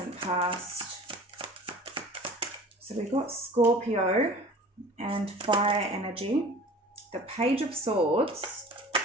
past? So we've got Scorpio and fire energy. The Page of Swords.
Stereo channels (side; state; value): both; normal; correlation 0.43